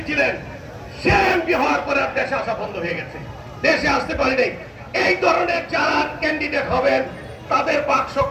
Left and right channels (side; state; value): both; identical; correlation 1.00